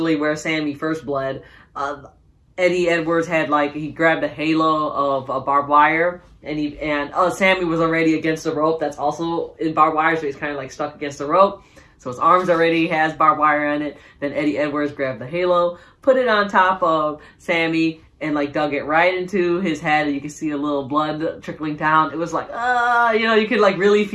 where Sami first bled. Eddie Edwards had he grabbed a halo of barbed wire, and Sami was already against the rope. That's also in barbed wire, so he's kind of like stuck against the rope. So his arms already has barbed wire on it. Then Eddie Edwards grabbed the halo, put it on top of Sami, and dug it right into his head, and you can see a little blood trickling down. It was like, you could really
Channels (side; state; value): both; identical; correlation 1.00